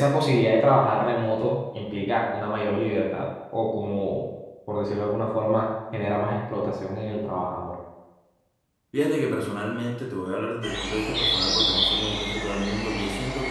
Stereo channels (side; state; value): both; identical; correlation 1.00